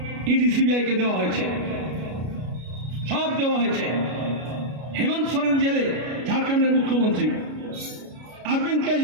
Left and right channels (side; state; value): left; late; 33 ms